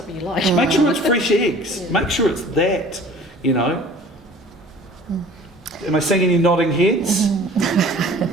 you like. Make sure it's fresh eggs. Make sure it's that, you know. Am I seeing any nodding heads?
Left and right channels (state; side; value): normal; both; correlation 0.47